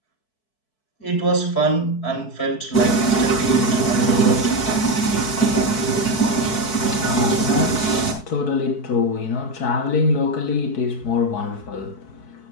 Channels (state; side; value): late; right; 4.6 ms